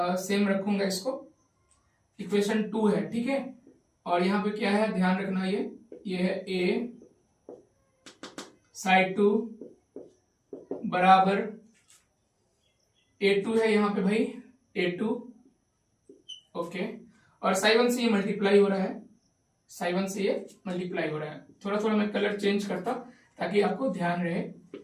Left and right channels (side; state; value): both; identical; correlation 1.00